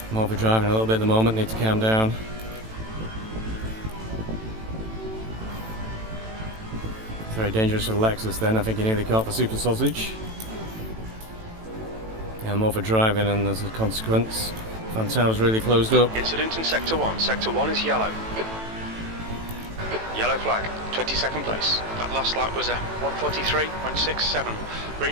I'm overdriving a little bit at the moment, need to calm down. It's very dangerous for the Lexus then, I think you nearly caught for Super Sausage. Yeah, I'm overdriving and as a consequence, Fantail's really closed up. Incident in Sector 1. Sector 1 is yellow. Yellow flag, 22nd place. That last lap was a 1:43.67.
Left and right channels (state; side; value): late; left; 18 ms